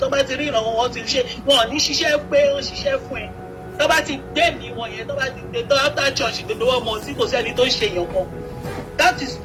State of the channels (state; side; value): identical; both; correlation 1.00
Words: bá ti rí ìrànwọ́ wọn ti ṣe wọn ò ní ṣiṣẹ́ pé wọ́n ṣiṣẹ́ fún ẹ. Tó bá ti gbé mi wọn yẹn tó bá ti gbé tó after church gbogbo wọn mọ̀ sí kò sẹ́ni tó ń ṣe èèyàn kan. That is